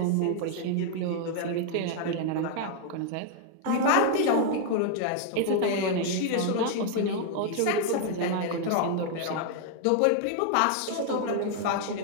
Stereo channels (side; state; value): both; different; correlation 0.00